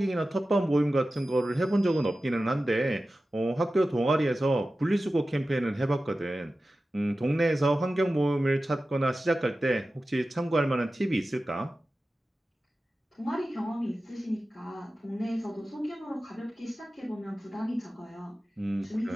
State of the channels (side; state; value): both; normal; correlation 0.95